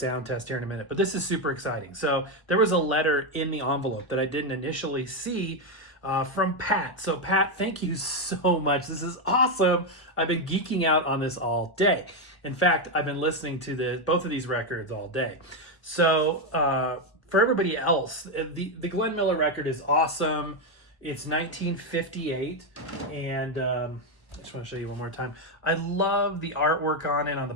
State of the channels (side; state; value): right; late; 1.2 ms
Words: test here in a minute, but this is super exciting. So there was a letter in the envelope that I didn't initially see from Pat. So Pat, thank you so much. This is awesome. I've been geeking out on this all day. In fact, I've been listening to both of these records all day. So for everybody else, the Glenn Miller record is awesome. It's 1958, and I just want to show you one more time. I love the artwork on it. On the